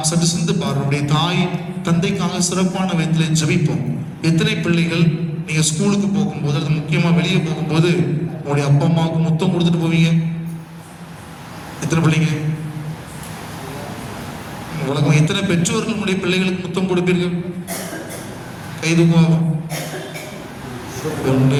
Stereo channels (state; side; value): identical; both; correlation 1.00